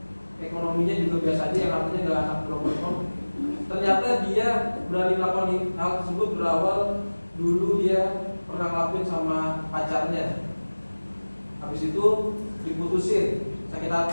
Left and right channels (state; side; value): inverted; both; correlation -1.00